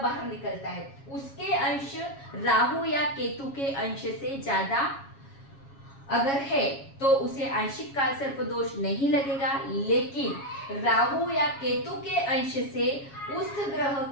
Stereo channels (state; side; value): late; right; 7.3 ms